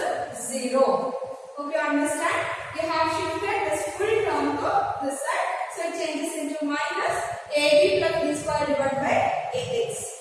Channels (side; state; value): both; identical; correlation 1.00